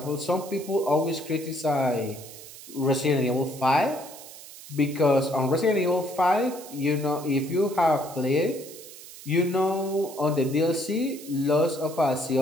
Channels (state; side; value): noise; right; hiss, 16 dB below the sound